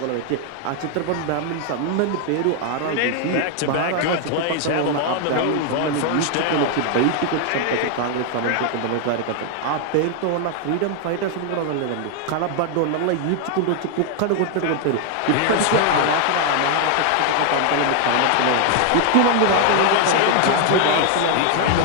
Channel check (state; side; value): different; both; correlation 0.00